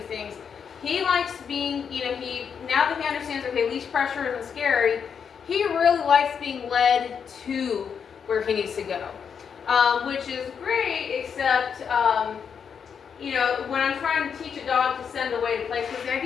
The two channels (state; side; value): quieter; right; 6.9 dB